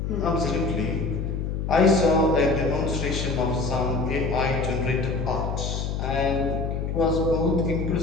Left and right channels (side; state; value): left; noise; hum, 2 dB below the sound